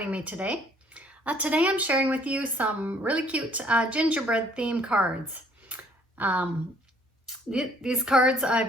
me today. Today I'm sharing with you some really cute gingerbread theme cards. These cards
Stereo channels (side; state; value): both; normal; correlation 0.61